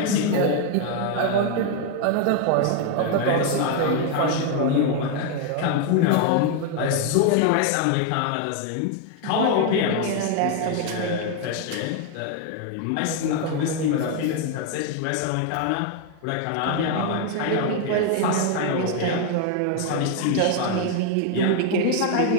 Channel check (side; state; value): both; different; correlation 0.01